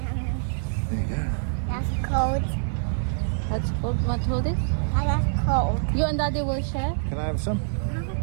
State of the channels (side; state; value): left; silent; digital silence